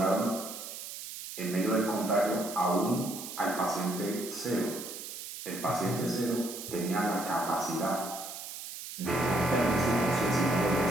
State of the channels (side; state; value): right; noise; hiss, 10 dB below the sound